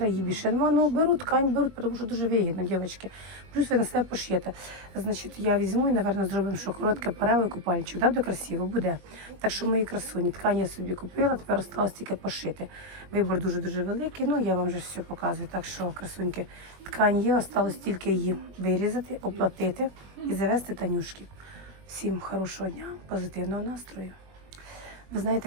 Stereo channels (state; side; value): late; left; 21 ms